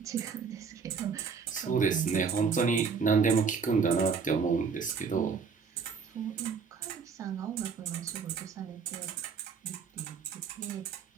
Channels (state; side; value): quieter; left; 5.7 dB